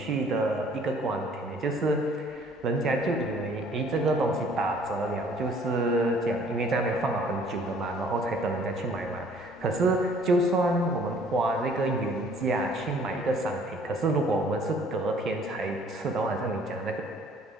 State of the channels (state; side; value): normal; both; correlation 0.57